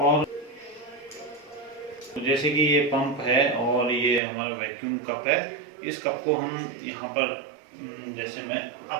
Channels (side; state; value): left; drops out; at 4.2 s